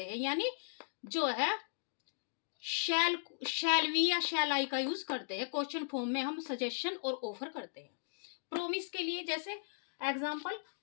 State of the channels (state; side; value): silent; right; digital silence